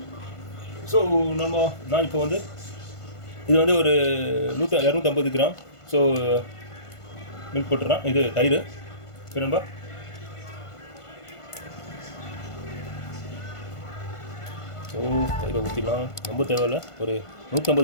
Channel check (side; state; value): right; late; 1.5 ms